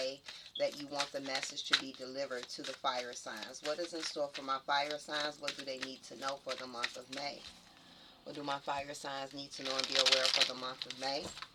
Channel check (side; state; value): both; identical; correlation 1.00